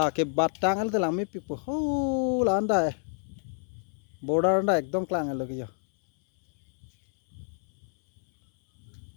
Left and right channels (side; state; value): right; silent; 59 dB below the other